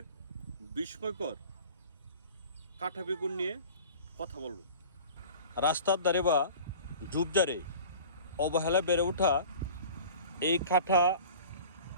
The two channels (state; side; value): inverted; both; correlation -0.41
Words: বিস্ময়কর কাঁটা বেগুন নিয়ে কথা বলব। রাস্তার ধারে বা ঝোপঝাড়ে অবহেলা বেড়ে ওঠা এই কাঁটা